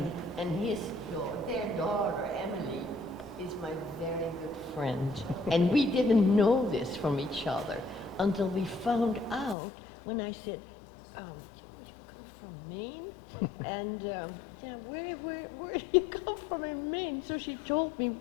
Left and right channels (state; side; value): drops out; right; at 9.6 s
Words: their daughter, Emily, is my very good friend. And we didn't know this from each other until we found out when I said, you come from Maine? And where do you come from in Maine? So she told me